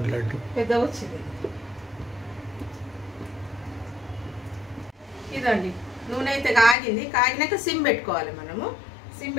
లడ్డు పెద్దగా వచ్చింది. ఇదండి నూనె అయితే కాగింది. కాగినాక సిమ్ పెట్టుకోవాలి. మనము సిమ్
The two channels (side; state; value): right; drops out; at 6.8 s